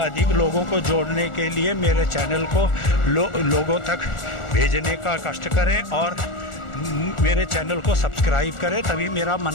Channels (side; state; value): right; late; 1.4 ms